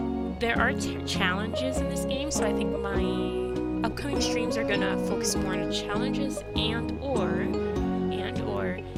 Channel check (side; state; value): both; identical; correlation 1.00